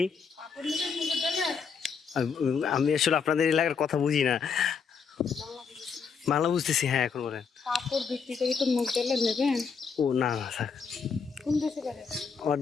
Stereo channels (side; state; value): right; quieter; 5.9 dB